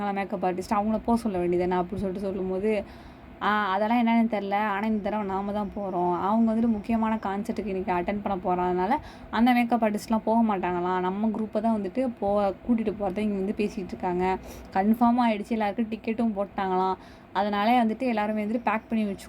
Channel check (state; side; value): identical; both; correlation 1.00